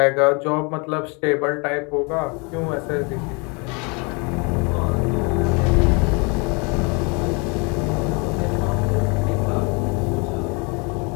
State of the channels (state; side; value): quieter; right; 31.6 dB